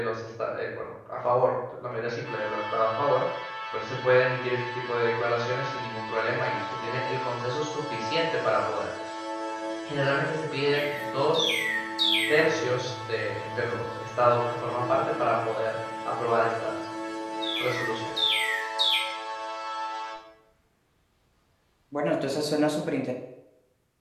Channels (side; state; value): both; identical; correlation 1.00